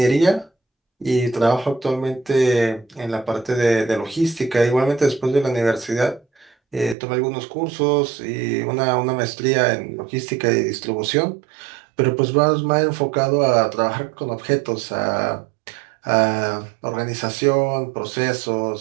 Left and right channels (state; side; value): drops out; left; at 7.0 s